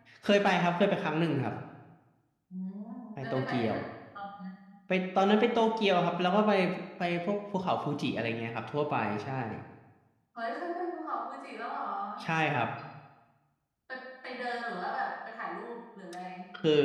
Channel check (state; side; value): identical; both; correlation 1.00